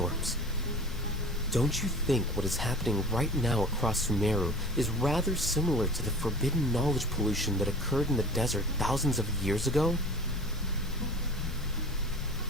Don't you think what is happening right now across Sumeru is rather similar to the forbidden knowledge pollution that occurred in the desert thousands of years ago?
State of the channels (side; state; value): both; normal; correlation 0.40